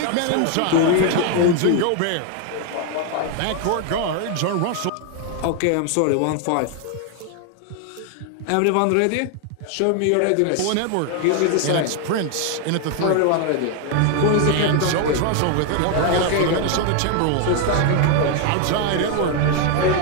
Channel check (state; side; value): different; both; correlation 0.01